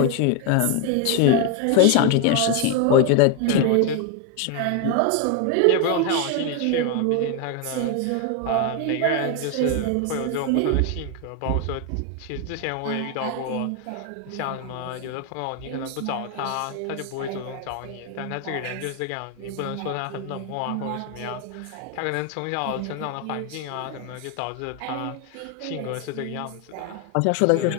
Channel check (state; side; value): different; both; correlation 0.01